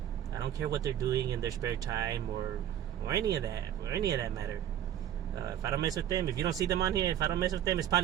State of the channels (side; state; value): left; quieter; 10.6 dB